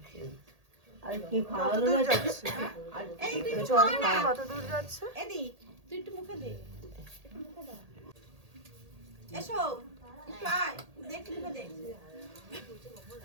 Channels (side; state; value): left; late; 1.8 ms